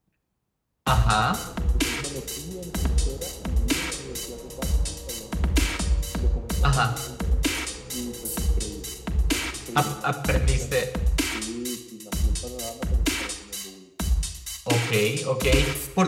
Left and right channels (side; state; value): both; identical; correlation 1.00